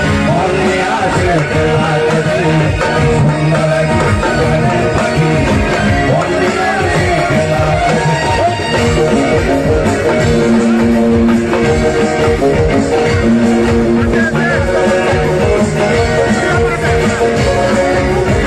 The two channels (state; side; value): identical; both; correlation 1.00